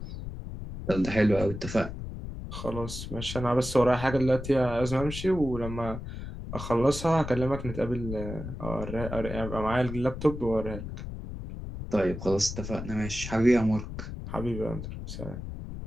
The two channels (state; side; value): noise; left; rumble, 8 dB below the sound